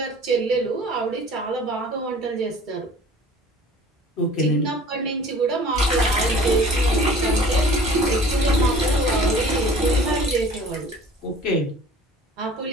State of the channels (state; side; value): normal; both; correlation 0.47